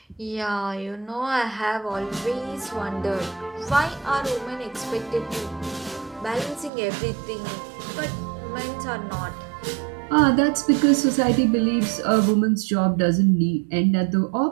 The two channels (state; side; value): drops out; left; at 6.7 s